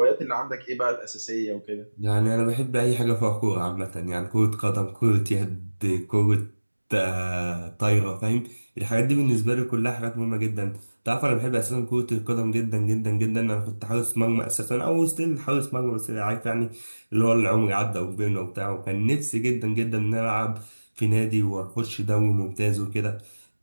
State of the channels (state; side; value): inverted; both; correlation -1.00